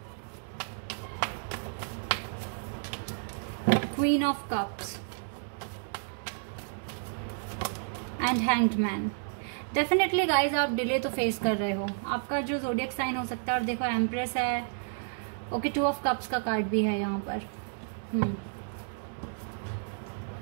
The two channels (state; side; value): silent; left; digital silence